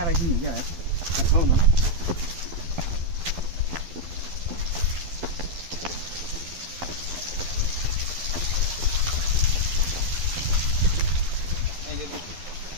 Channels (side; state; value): left; late; 12 ms